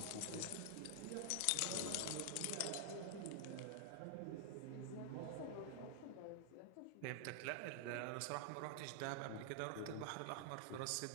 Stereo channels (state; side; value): different; both; correlation 0.00